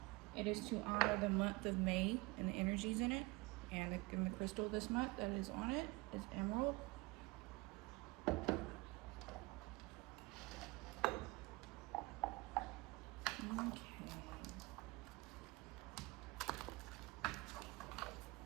it is to honor the month of May and the energies in it, and the crystal this month that is on it is emerald. Okay.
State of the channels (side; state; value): left; quieter; 23.4 dB